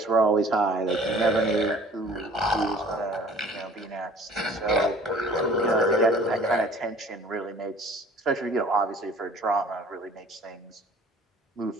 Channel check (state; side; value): normal; both; correlation 0.50